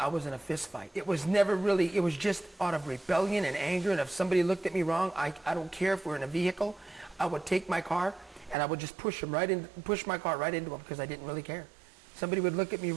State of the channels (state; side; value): drops out; left; at 8.6 s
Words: was in a fist fight. It was never really, it was just out of rebellion and anger, and if somebody looked at me wrong, I don't care if we're in a vehicle, I would take my car and I would just push my car right into them because I didn't really care. Somebody would look at me